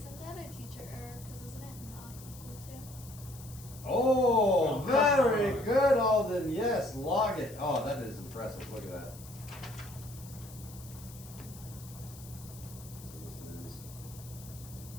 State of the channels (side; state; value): left; noise; hiss, 18 dB below the sound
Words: that a teacher error? Because isn't it not equal to? Oh, very good, Alden. Yes, log it. Oh, that is impressive. Look at that. So this is